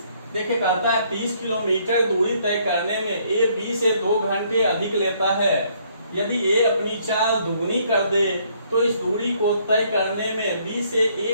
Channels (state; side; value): inverted; both; correlation -0.66